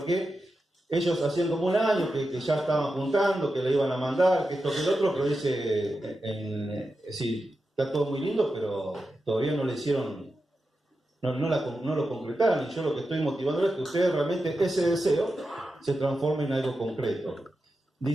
ellos hacían como un año que ya estaban juntando, que le iban a mandar, que esto, que el otro, pero dice, sí, está todo muy lindo, pero todavía no le hicieron, no lo concretaron, y yo lo que estoy motivando es que ustedes realmente ese deseo se transforme en algo concreto.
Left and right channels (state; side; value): normal; both; correlation 0.90